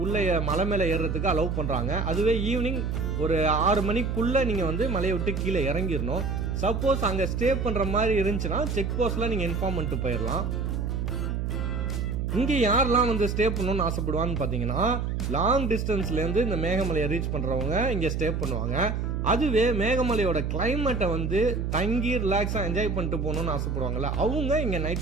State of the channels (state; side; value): noise; right; hum, 1 dB below the sound